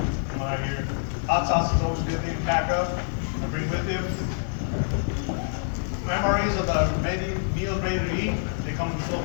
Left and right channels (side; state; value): right; silent; digital silence